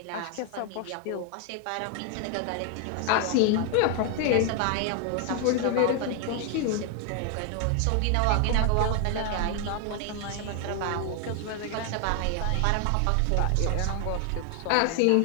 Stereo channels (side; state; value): both; different; correlation 0.00